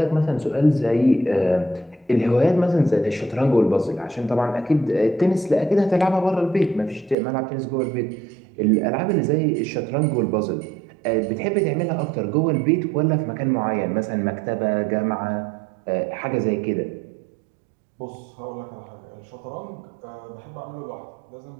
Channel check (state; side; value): drops out; left; at 7.2 s